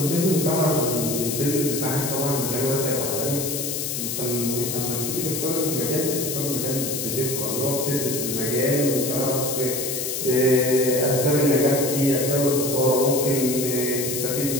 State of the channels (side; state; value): left; noise; hiss, 3 dB below the sound